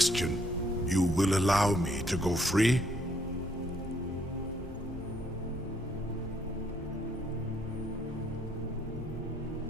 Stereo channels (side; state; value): both; normal; correlation 0.69